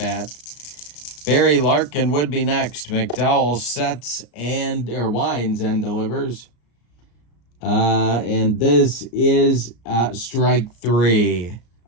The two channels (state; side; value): late; right; 34 ms